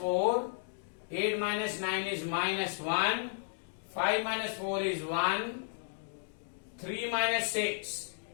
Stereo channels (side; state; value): right; silent; digital silence